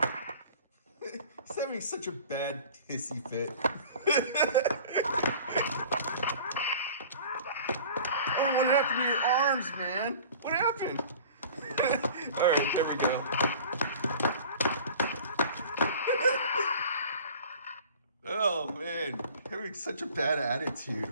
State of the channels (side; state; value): both; inverted; correlation -0.44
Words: He's having such a bad hissy fit. Oh, what happened to your arms, man? What happened? All right, there we go. Oh man, having such a bad attitude,